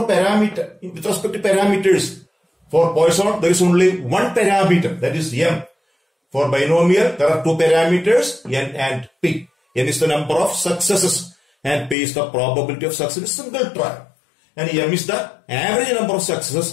parameter, with respect to parameters, for Poisson, there is only one parameter, that is m. For binomial, there are two parameters, n and p. N is the number of successes and p is the probability of success in a single trial. And m is the average number of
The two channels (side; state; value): right; drops out; at 12.0 s